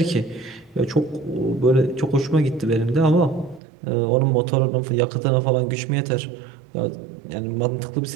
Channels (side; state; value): left; drops out; at 3.6 s